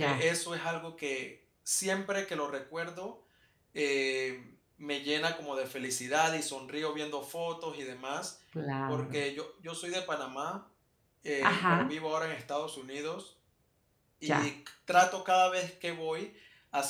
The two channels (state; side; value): identical; both; correlation 1.00